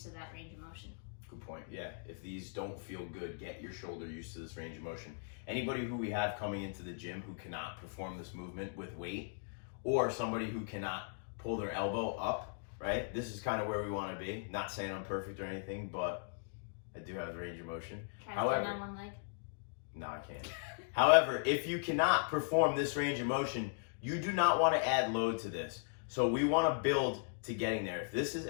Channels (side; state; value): right; silent; digital silence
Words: to that range of motion. Good point. Yeah, if these don't feel good, get your shoulder used to this range of motion. Anybody who we have coming into the gym who cannot perform this movement with weight, or somebody who cannot pull their elbow up, right? This is kind of where we want to be. Not saying I'm perfect or anything, but I do have range of motion. Try to stand on one leg. No, I can't. However, if you cannot perform this range of motion, you do not want to add load to this. So we want to build to getting there. If this is